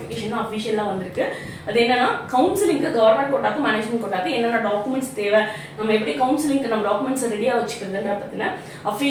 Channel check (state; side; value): identical; both; correlation 1.00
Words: தான் அஃபிஷியலாக வந்திருக்கு. அது என்னன்னா கவுன்சிலிங்க்கு கவர்மெண்ட் கோட்டாக்கு மேனேஜ்மெண்ட் கோட்டாக்கு என்னென்ன டாக்குமெண்ட்ஸ் தேவை, நம்ம எப்படி கவுன்சிலிங்க்கு நம்ம டாக்குமெண்ட்ஸை ரெடியாக வச்சுக்கிறதுன்ற பற்றின